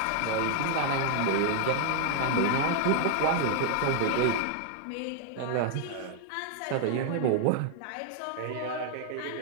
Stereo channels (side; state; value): both; different; correlation 0.00